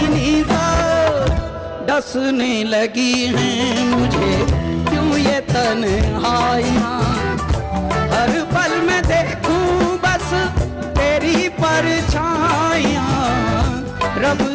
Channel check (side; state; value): both; identical; correlation 1.00